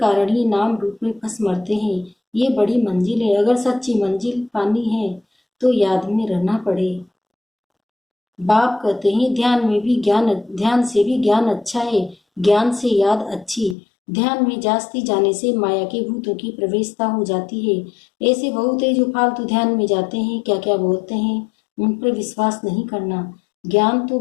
ही नाम रूप में फंस मरते हैं। ये बड़ी मंजिल है, अगर सच्ची मंजिल पानी है तो याद में रहना पड़े। बाप कहते हैं ध्यान से भी ज्ञान अच्छा है, ज्ञान से याद अच्छी। ध्यान में जास्ती जाने से माया के भूतों की प्रवेशता हो जाती है। ऐसे बहुत है जो फालतू ध्यान में जाते हैं, क्या क्या बोलते हैं, उन पर विश्वास नहीं करना। ज्ञान तो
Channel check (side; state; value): right; drops out; at 13.8 s